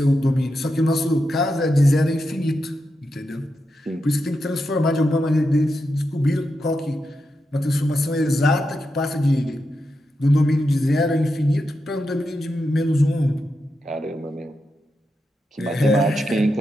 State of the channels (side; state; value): both; normal; correlation 0.87